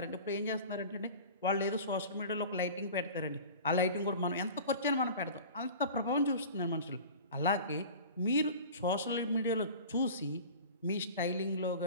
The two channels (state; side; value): inverted; both; correlation -0.38